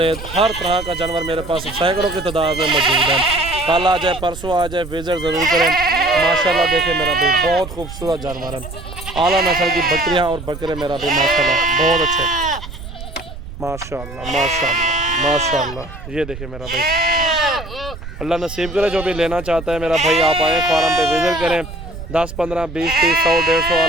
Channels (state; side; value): noise; right; rumble, 12 dB below the sound